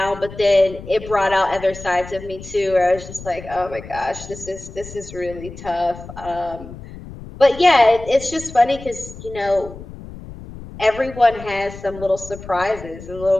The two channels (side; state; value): left; noise; rumble, 14 dB below the sound